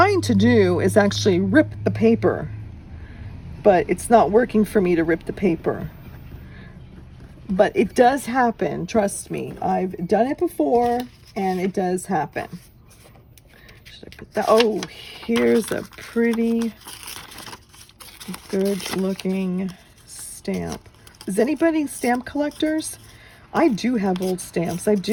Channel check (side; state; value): both; identical; correlation 1.00